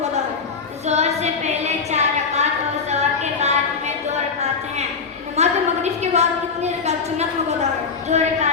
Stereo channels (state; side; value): quieter; right; 5.2 dB